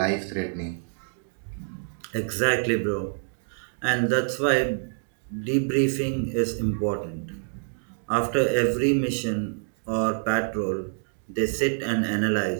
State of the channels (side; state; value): left; silent; digital silence